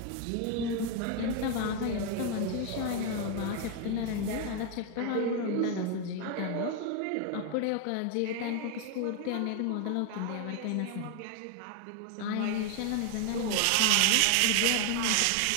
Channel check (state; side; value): different; both; correlation 0.01